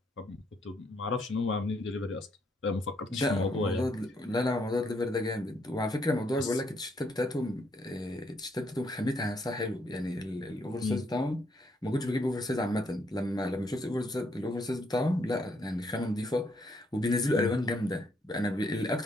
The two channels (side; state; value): both; normal; correlation 0.72